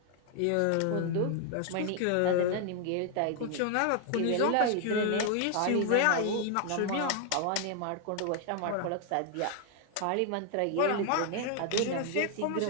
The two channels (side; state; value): both; different; correlation 0.00